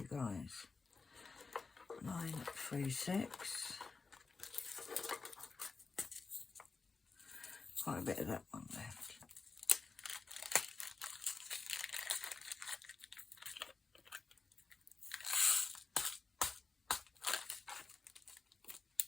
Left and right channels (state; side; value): quieter; right; 4.3 dB